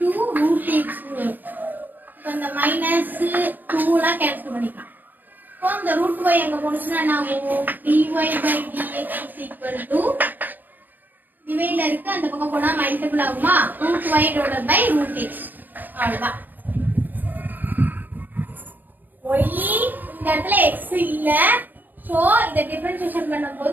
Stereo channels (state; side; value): late; left; 0.090 ms